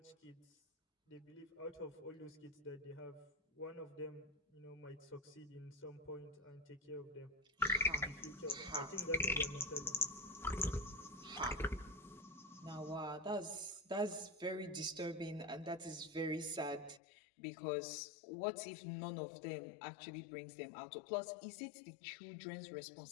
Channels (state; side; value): drops out; right; at 17.0 s